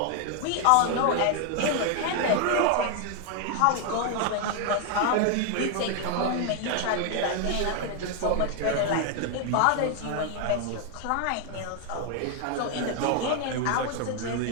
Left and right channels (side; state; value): both; different; correlation 0.00